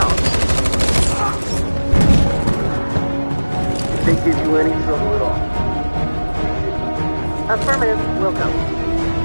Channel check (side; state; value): both; inverted; correlation -1.00